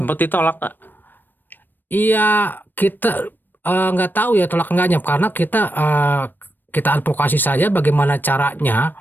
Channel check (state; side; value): late; right; 0.092 ms